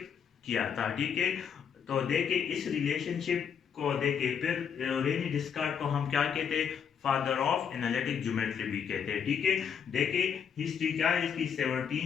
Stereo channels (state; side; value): quieter; right; 7.4 dB